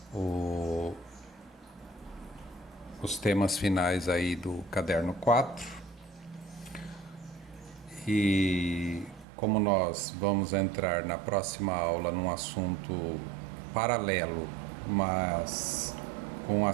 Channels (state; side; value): drops out; left; at 9.2 s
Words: os temas finais aí do caderno 4. E como nós vamos entrar na próxima aula num assunto paralelo, mas com